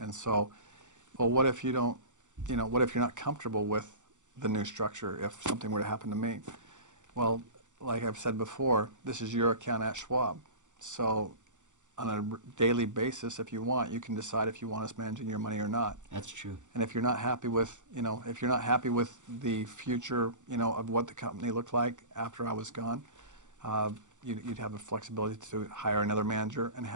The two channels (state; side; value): late; left; 0.86 ms